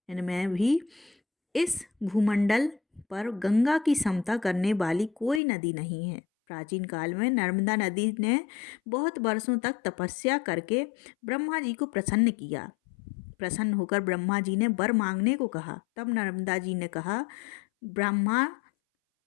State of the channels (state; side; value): drops out; right; at 5.4 s